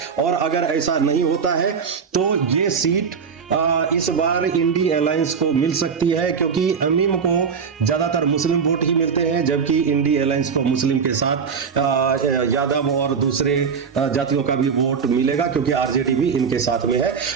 और अगर ऐसा नहीं होता है तो ये सीट इस बार इंडी अलायंस को मिल सकती है, क्योंकि अमीम को ज्यादातर मुस्लिम वोट ही मिलते हैं, जबकि इंडी अलायंस को मुस्लिम के साथ यादव और दूसरे जातियों का भी वोट मिलेगा, क्योंकि आरजेडी भी इनके साथ में है।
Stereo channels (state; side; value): quieter; left; 6.2 dB